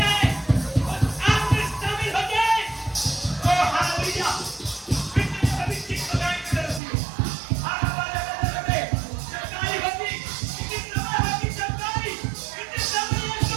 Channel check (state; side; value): drops out; left; at 6.8 s